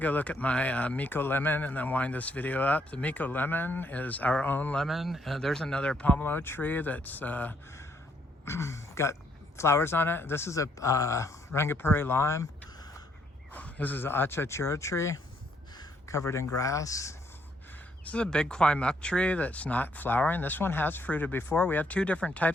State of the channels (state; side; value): normal; both; correlation 0.71